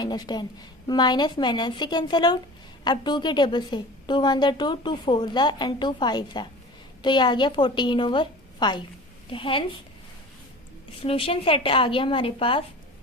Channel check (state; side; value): normal; both; correlation 0.38